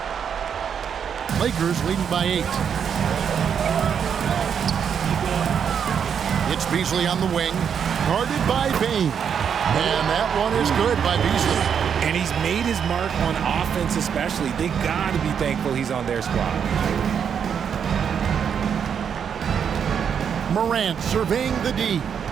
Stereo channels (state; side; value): quieter; left; 7.6 dB